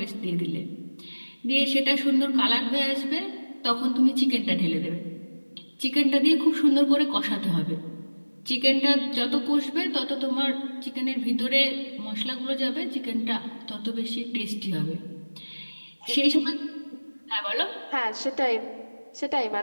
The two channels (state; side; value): inverted; both; correlation -1.00